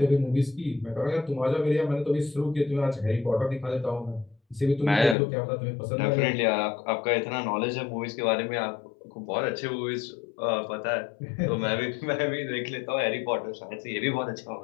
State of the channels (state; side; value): drops out; right; at 5.2 s